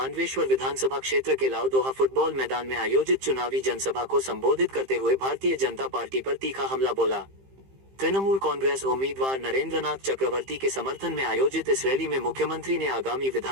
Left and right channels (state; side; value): late; left; 15 ms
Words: विधानसभा क्षेत्र के लाउदोहा फुटबॉल मैदान में आयोजित चुनावी जनसभा को संबोधित करते हुए भारतीय जनता पार्टी पर तीखा हमला बोला। तृणमूल कांग्रेस उम्मीदवार नरेंद्रनाथ चक्रवर्ती के समर्थन में आयोजित इस रैली में मुख्यमंत्री ने आगामी